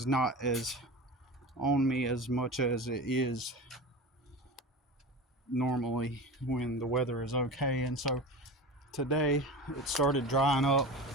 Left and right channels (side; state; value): both; normal; correlation 0.30